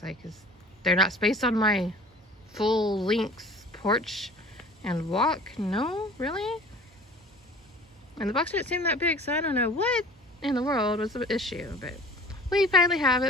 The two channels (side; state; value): both; normal; correlation 0.45